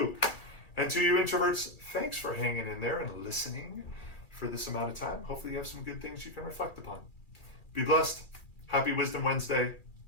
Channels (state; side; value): late; right; 2.4 ms